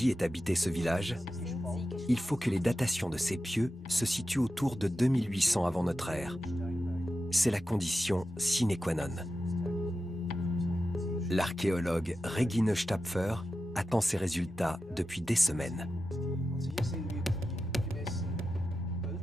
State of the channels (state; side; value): normal; both; correlation 0.91